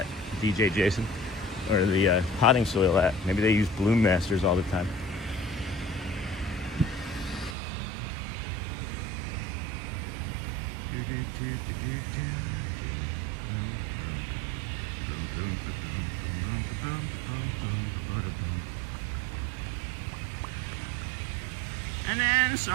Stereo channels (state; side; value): drops out; left; at 7.6 s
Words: DJ Jason, or the potting soil at. Maybe they use Bloom Masters all the time. And then,